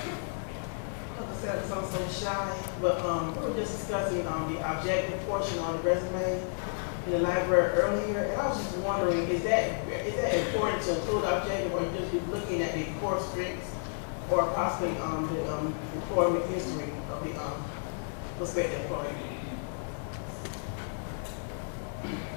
Hello, myself because I'm so shy, but we were just discussing the objective portion on the resume in the library earlier, and I was just wondering, is that important to include objective, or just be looking at the core strengths, or possibly the employment history of the prospective employee?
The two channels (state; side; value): silent; right; digital silence